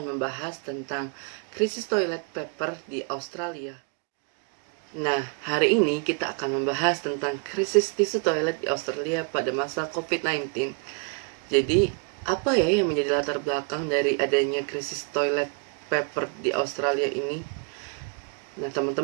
membahas tentang krisis toilet paper di Australia. Nah, hari ini kita akan membahas tentang krisis tisu toilet di Australia pada masa COVID-19. Jadi, apa ya yang menjadi latar belakang dari adanya krisis toilet paper di Australia ini? Nah,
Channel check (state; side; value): quieter; left; 37.8 dB